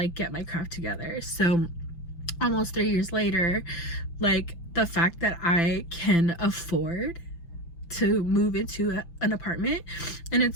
get my crap together. So almost 3 years later, like the fact that I can afford to move into an apartment, and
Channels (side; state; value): right; late; 5.9 ms